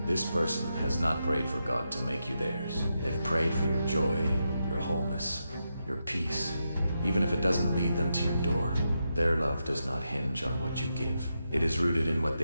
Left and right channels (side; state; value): both; inverted; correlation -0.86